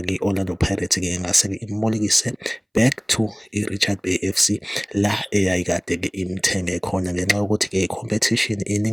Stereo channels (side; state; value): both; identical; correlation 1.00